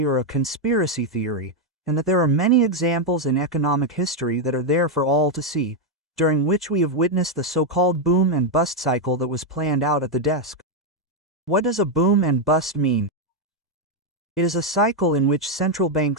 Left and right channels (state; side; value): normal; both; correlation 0.02